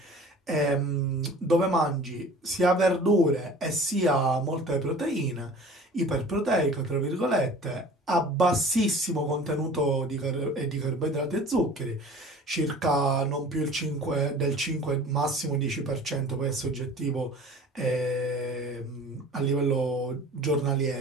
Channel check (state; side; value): normal; both; correlation 0.44